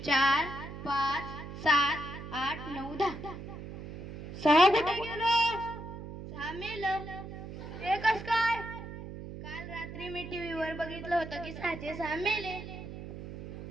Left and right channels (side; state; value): right; noise; hum, 10 dB below the sound